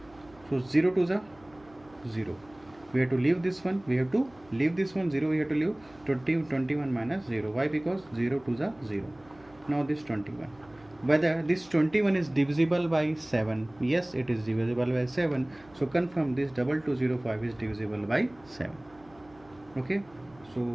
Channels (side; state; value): right; noise; hum, 27 dB below the sound